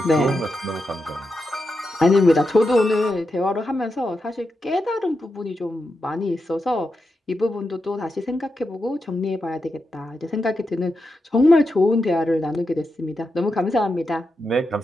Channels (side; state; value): both; normal; correlation 0.87